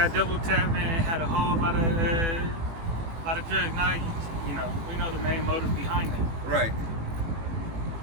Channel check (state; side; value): late; left; 18 ms